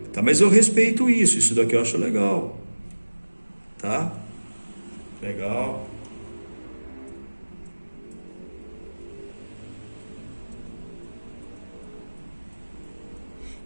Tá, mas eu respeito isso. Isso daqui eu acho legal. Tá? Legal.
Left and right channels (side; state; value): both; inverted; correlation -1.00